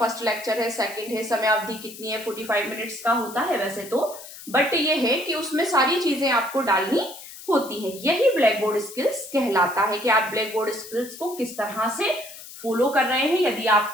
लेक्चर है, सेकंड है, समय अवधि कितनी है, 45 मिनट्स का होता है वैसे तो, बट ये है कि उसमें सारी चीजें आपको डालनी होती है। यही ब्लैक बोर्ड स्किल्स कहलाता है कि आप ब्लैक बोर्ड स्किल्स को किस तरह से फॉलो कर रहे हैं। यदि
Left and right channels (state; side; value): noise; left; hiss, 15 dB below the sound